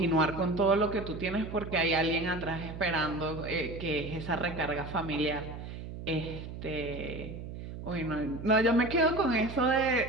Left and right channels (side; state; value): right; noise; hum, 10 dB below the sound